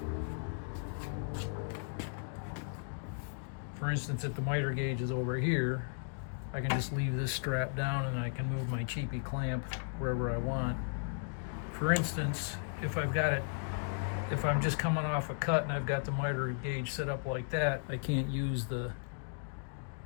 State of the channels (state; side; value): silent; right; digital silence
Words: For instance, if the miter gauge is over here, I can just leave this strap down and I can move my cheapy clamp wherever I want. For instance, if I'm just coming off a cut and I've got the miter gauge set up like that, I can't use the